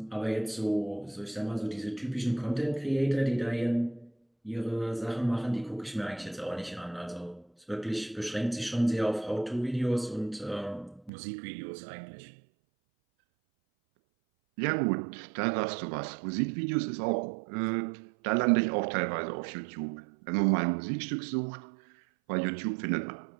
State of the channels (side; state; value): left; drops out; at 11.1 s